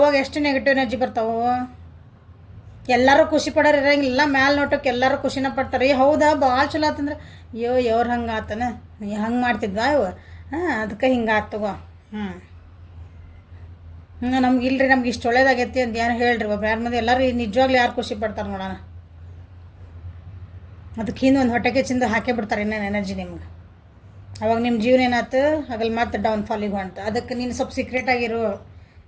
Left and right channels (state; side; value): identical; both; correlation 1.00